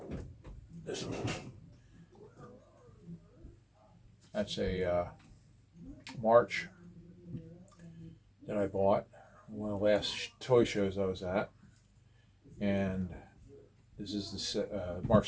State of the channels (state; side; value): identical; both; correlation 1.00